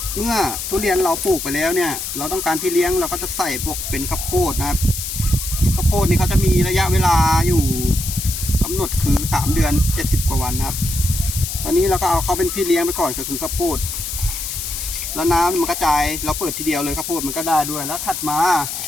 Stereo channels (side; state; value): left; noise; hiss, 5 dB below the sound